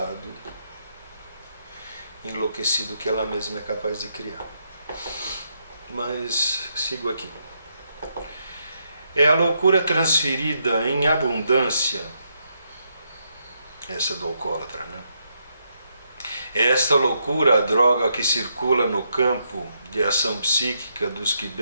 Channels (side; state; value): both; inverted; correlation -0.78